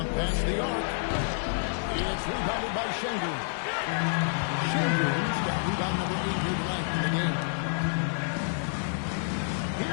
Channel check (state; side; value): silent; right; digital silence